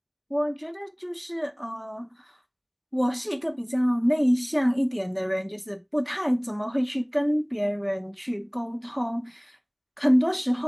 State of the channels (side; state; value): both; identical; correlation 1.00